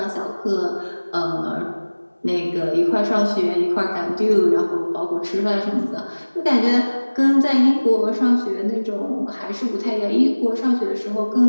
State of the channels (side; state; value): both; inverted; correlation -1.00